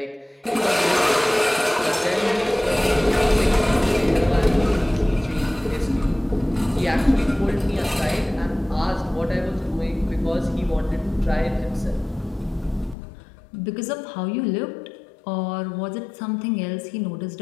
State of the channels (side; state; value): right; drops out; at 13.0 s